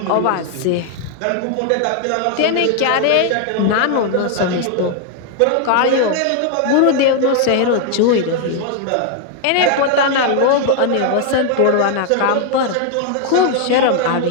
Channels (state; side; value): different; both; correlation 0.00